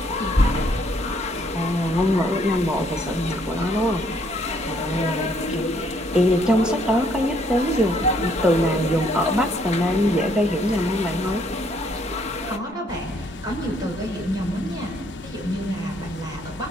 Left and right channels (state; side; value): normal; both; correlation 0.67